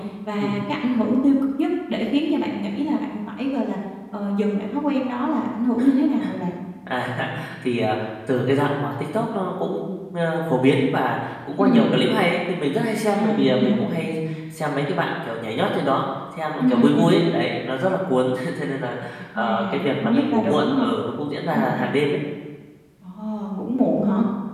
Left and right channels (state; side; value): identical; both; correlation 1.00